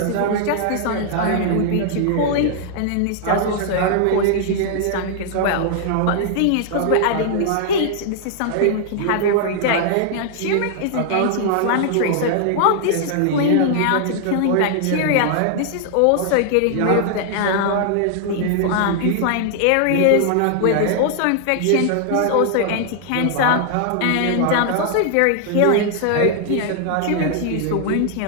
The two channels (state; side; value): different; both; correlation 0.00